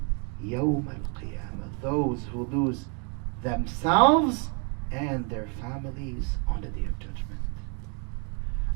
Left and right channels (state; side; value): quieter; left; 36.8 dB